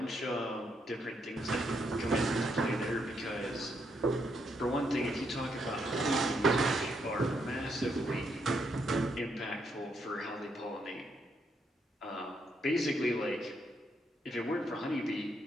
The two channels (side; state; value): both; normal; correlation 0.77